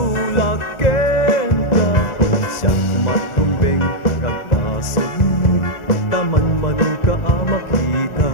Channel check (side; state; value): right; late; 1.4 ms